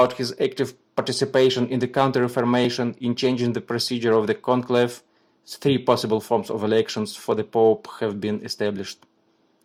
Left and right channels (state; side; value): identical; both; correlation 1.00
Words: his active participation in the Counter-Reformation in changing the procedure of the conclave. 3 possible forms of elections for the pope have been established,